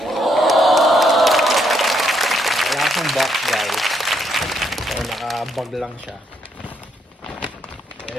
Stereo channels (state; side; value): normal; both; correlation 0.74